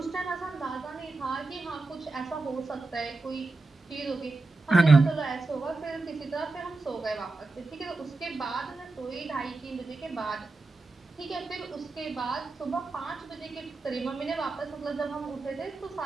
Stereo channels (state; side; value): quieter; left; 3.4 dB